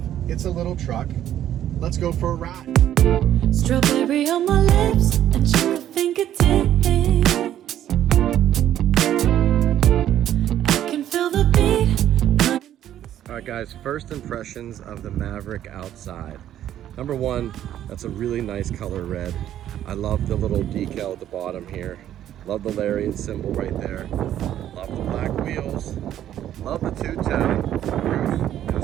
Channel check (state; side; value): quieter; left; 11.4 dB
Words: It's a little truck. Let's go for a ride. Strawberry on my lips and sugar fingertips. I can feel the beat. All right, guys, first impressions of the Maverick outside. Number one, that's a really nice color red. I love the little decal at the bottom here. Love the Lariat symbol right there. Love the black wheels. Love the two-tone roof